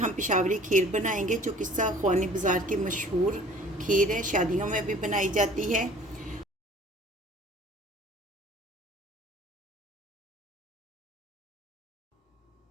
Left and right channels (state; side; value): normal; both; correlation 0.50